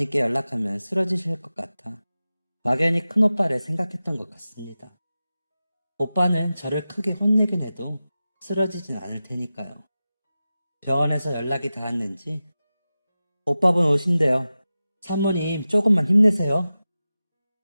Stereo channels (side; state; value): both; inverted; correlation -0.94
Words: 연락하면 쓰러지실 것 같아 막연히 큰오빠를 생각했던 것 같습니다. 오빠는 저를 크게 혼내긴 해도 쓰러지진 않을 테니까요. 병원에서 연락이 닿았는지 오빠분 오신대요. 산모님 조금만 힘내세요.